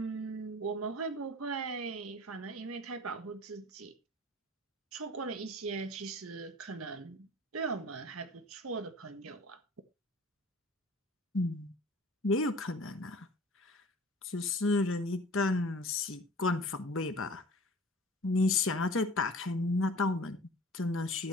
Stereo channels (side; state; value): both; normal; correlation 0.44